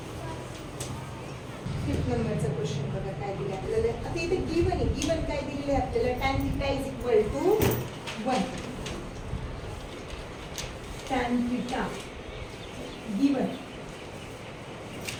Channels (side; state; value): both; identical; correlation 1.00